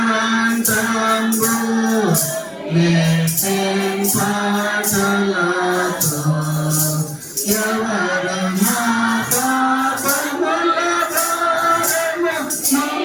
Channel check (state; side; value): identical; both; correlation 1.00